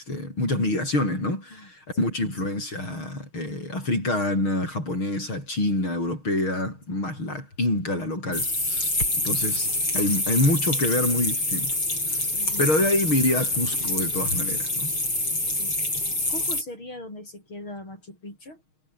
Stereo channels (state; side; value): late; right; 6.4 ms